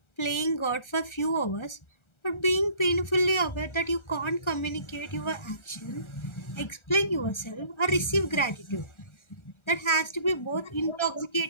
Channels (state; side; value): late; right; 1.4 ms